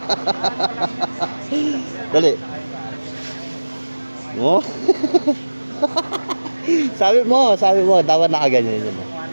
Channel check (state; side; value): inverted; both; correlation -1.00